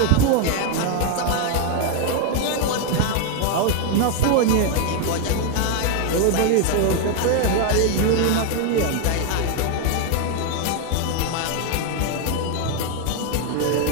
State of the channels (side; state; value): both; different; correlation 0.00